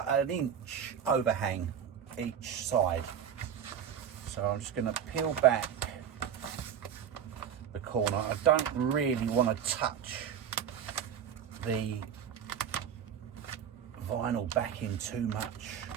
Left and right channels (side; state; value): left; quieter; 8.5 dB